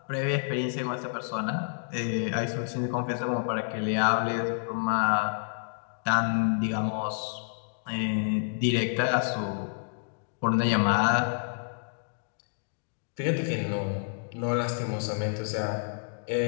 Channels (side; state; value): right; silent; digital silence